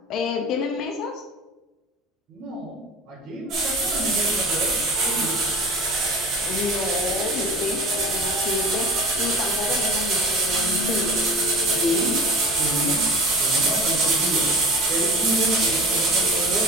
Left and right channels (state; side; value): normal; both; correlation 0.37